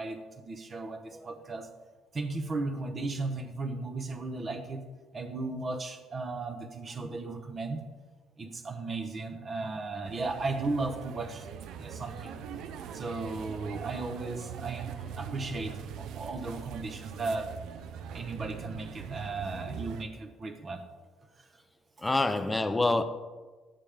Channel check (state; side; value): normal; both; correlation 0.80